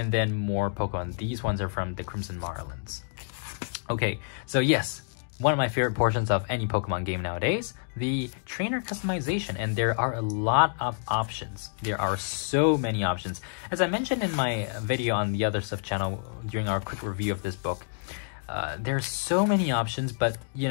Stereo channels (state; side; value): silent; right; digital silence